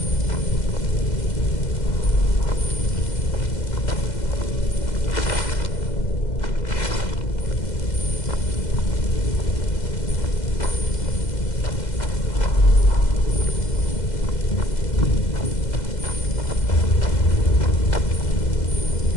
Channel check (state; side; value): late; right; 2.0 ms